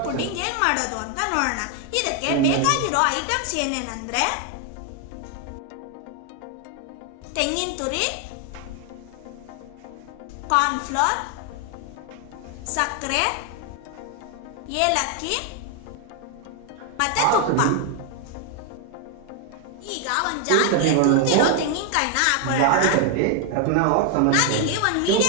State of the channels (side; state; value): both; different; correlation 0.01